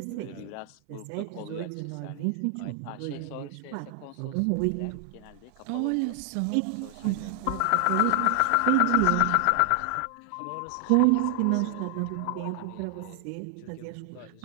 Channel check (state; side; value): different; both; correlation 0.00